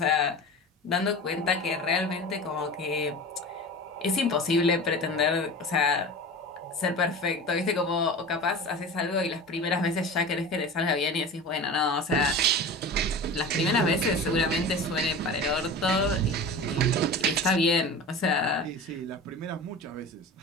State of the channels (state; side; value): normal; both; correlation 0.33